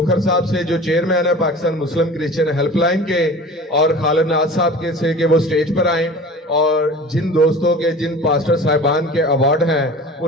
صاحب سے جو چیئرمین ہے پاکستان مسلم کرسچن ہیلپ لائن کے، اور خالد ناز صاحب کے سے کہ وہ سٹیج پر آئیں اور جن دوستوں کے جن پاسٹر صاحبان کے ایوارڈ ہیں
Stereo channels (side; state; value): both; normal; correlation 0.39